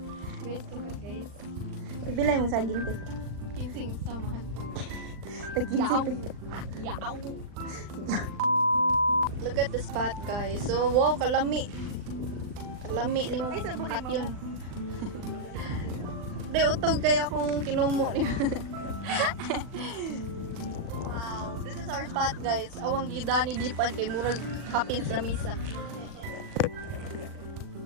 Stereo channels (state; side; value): late; left; 39 ms